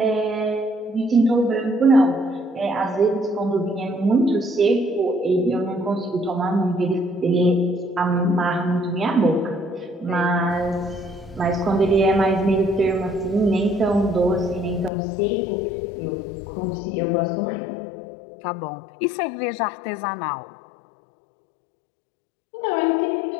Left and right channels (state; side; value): drops out; right; at 14.9 s